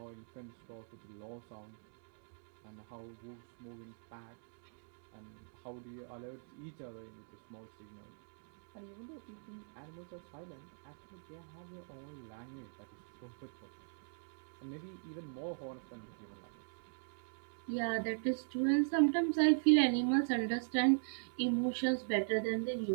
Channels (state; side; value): silent; left; digital silence